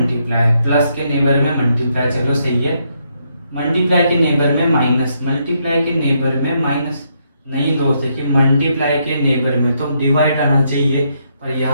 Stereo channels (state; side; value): inverted; both; correlation -0.76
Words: चलो सही है। मल्टीप्लाई के नेबर में माइनस, नहीं दोस्त, देखिए मल्टीप्लाई के नेबर में तो डिवाइड आना चाहिए, पर